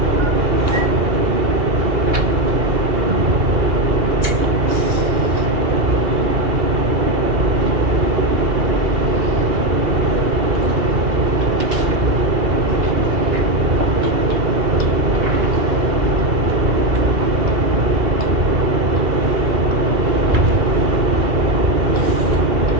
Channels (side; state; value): left; late; 2.4 ms